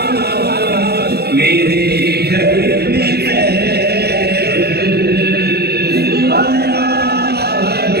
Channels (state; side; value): late; left; 0.47 ms